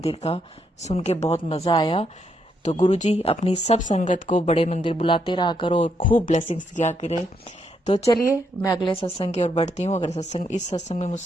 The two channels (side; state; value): both; normal; correlation 0.77